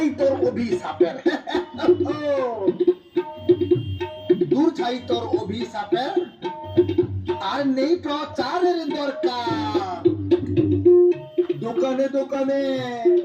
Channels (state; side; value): identical; both; correlation 1.00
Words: তোর অভিশাপের, দূর ছাই তোর অভিশাপের, আর নেই প্রচারের দরকার। দোকানে দোকানে,